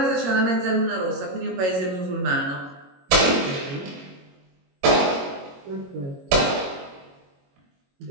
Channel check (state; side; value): late; left; 22 ms